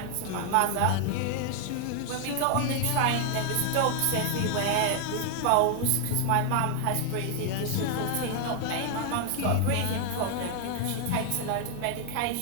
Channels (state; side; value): different; both; correlation 0.00